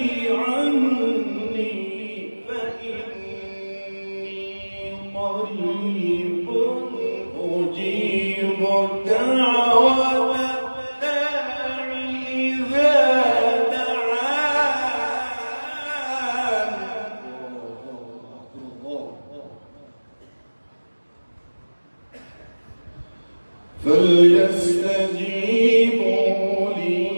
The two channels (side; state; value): both; inverted; correlation -1.00